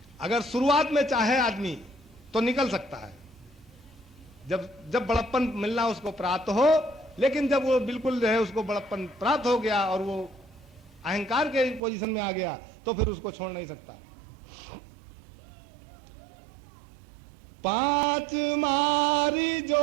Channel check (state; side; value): drops out; left; at 11.8 s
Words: अगर शुरुआत में चाहे आदमी तो निकल सकता है, जब बड़प्पन मिलना उसको प्राप्त हो, लेकिन जब वो बिल्कुल जो है उसको बड़प्पन प्राप्त हो गया और वो अहंकार के पोजीशन में आ गया तो फिर उसको छोड़ नहीं सकता। 5 मारी